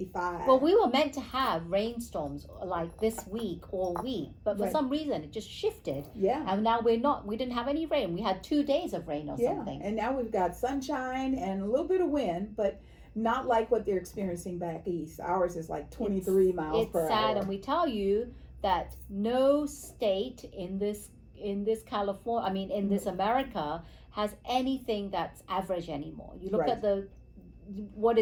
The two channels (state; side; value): identical; both; correlation 1.00